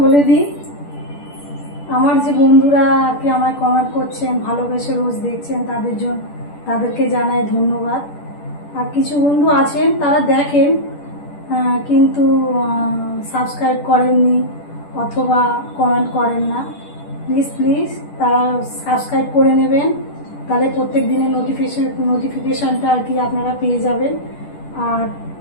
বলে দিই, আমার যে বন্ধুরা আর কি আমায় কমেন্ট করছেন, ভালোবেসে রোজ দেখছেন, তাদেরকে জানাই ধন্যবাদ। আর কিছু বন্ধু আছেন তারা দেখেন কিন্তু সাবস্ক্রাইব করেননি অথবা কমেন্ট করেন না। প্লিজ তারা সাবস্ক্রাইব করে নেবেন, তাহলে প্রত্যেক দিনের নোটিফিকেশানটা আর কি আপনারা পেয়ে যাবেন। আর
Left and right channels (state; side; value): late; right; 10 ms